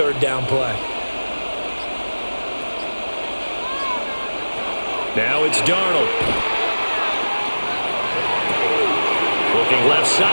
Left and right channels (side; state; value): both; inverted; correlation -1.00